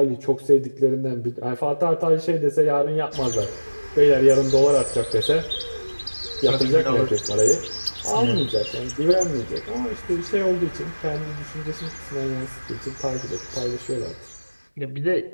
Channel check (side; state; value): both; inverted; correlation -1.00